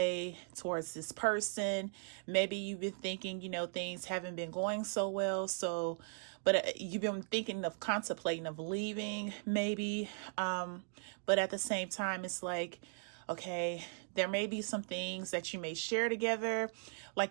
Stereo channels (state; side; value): silent; left; digital silence